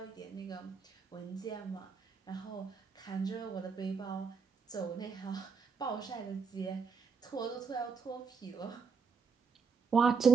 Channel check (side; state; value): left; quieter; 5.5 dB